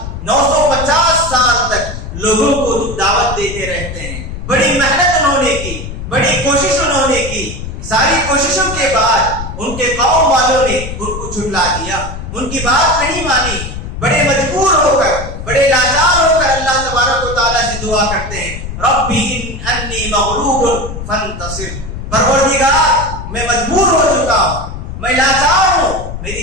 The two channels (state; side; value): noise; left; rumble, 8 dB below the sound